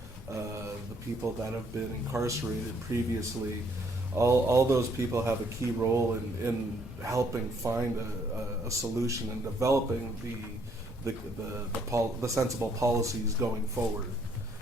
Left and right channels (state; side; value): normal; both; correlation 0.67